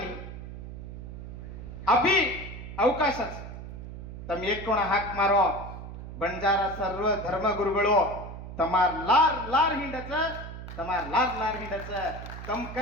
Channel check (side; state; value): right; noise; hum, 10 dB below the sound